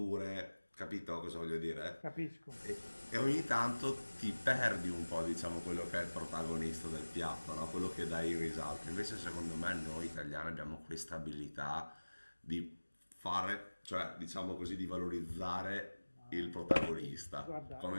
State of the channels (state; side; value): inverted; both; correlation -1.00